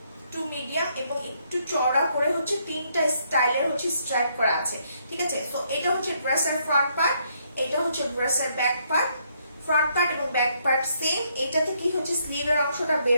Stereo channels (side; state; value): both; inverted; correlation -0.72